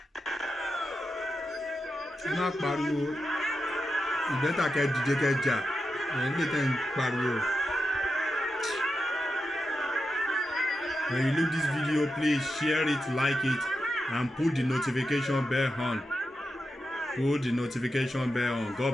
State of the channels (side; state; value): both; normal; correlation 0.89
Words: ẹ má pariwo ìgbẹ́ta kẹ́ dìde kẹ́ jà ẹ̀yin lè tẹ̀ ń pariwo. When you look this video, please share it, like it, and put the notification bell on. Put the notification bell on.